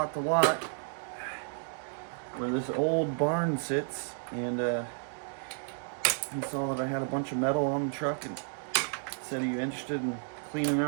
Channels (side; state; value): left; silent; digital silence